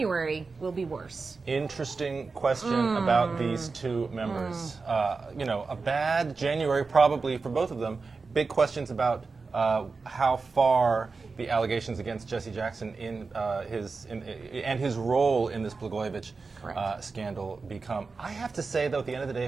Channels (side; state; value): left; quieter; 4.3 dB